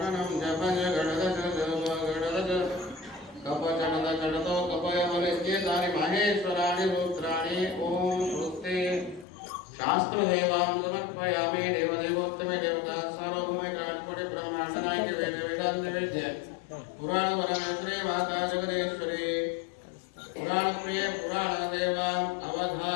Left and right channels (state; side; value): drops out; right; at 9.2 s